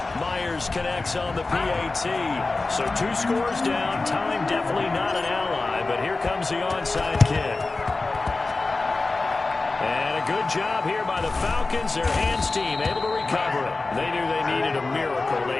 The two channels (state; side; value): quieter; right; 3.5 dB